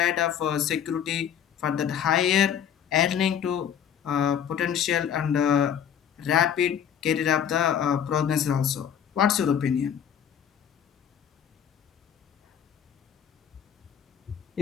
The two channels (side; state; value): right; quieter; 8.8 dB